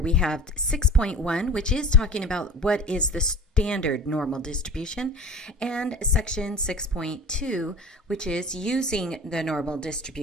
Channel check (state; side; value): normal; both; correlation 0.38